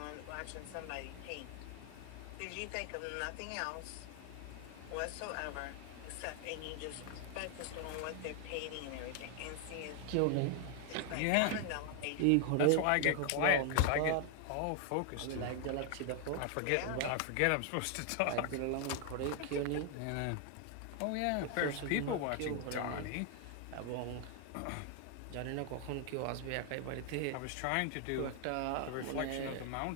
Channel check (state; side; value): different; both; correlation 0.00